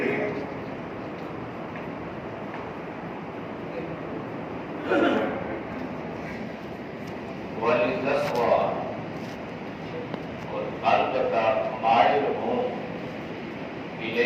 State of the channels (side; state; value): both; identical; correlation 1.00